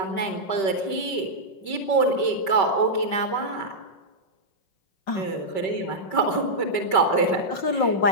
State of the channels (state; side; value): late; right; 5.2 ms